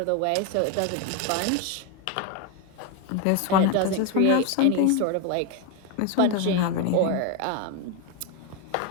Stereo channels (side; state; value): both; different; correlation 0.01